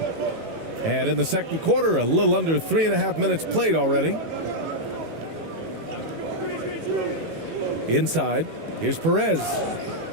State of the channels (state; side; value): late; left; 18 ms